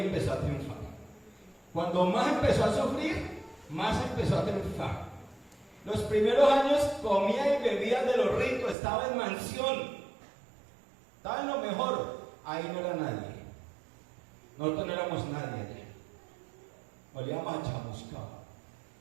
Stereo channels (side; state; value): left; drops out; at 8.8 s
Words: a triunfar. Cuando más empezó a sufrir, más empezó a triunfar. Los primeros años comía y bebía de lo rico, estaba en mansión, estaba en lo mejor. Ahí no era nadie. Nosotros no éramos nadie allá. Olíamos a chamuscado.